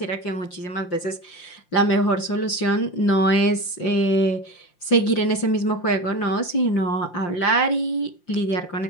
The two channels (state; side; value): late; right; 5.7 ms